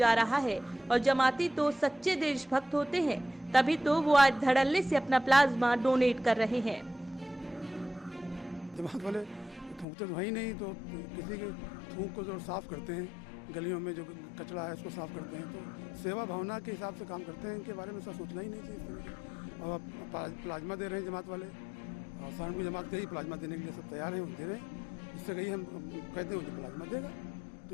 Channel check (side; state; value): right; drops out; at 9.9 s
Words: रहा है और जमाती तो सच्चे देशभक्त होते हैं, तभी तो वो आज धड़ल्ले से अपना प्लाज्मा डोनेट कर रहे हैं। जमात वाले थूकते तो वही नहीं, तो किसी के थूक को जो साफ करते हैं, गलियों में जो कचरा है इसको साफ करते हैं, तो सेवा भावना के हिसाब से काम करते हैं। इनके बारे में सब सोचना ही नहीं चाहिए इस तरह के। और अब प्लाज्मा दे रहे हैं जमात वाले, और सहारनपुर जमात के ही प्लाज्मा देने के लिए सब तैयार हैं, दे रहे हैं। इससे कहीं हम कहते हैं मुझे प्लाज्मा देगा,